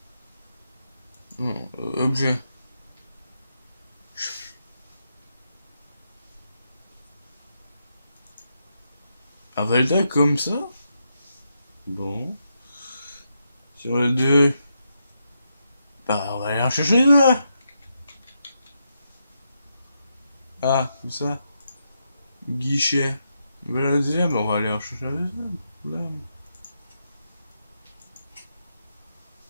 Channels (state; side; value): inverted; both; correlation -0.83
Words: Non, objet. Un Velda comme ça? Bon. Sur le 2. Bah, on va aller en chercher deux. Ah, comme ça. Guichet. Bah, la deuxième, on va aller en chercher la deuxième. Problème.